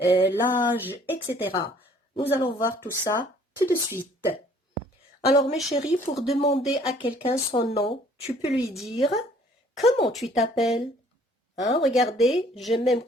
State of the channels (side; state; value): both; normal; correlation 0.58